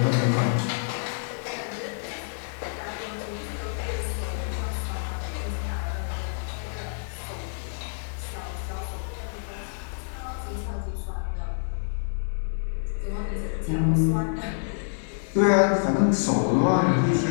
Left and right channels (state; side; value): silent; right; digital silence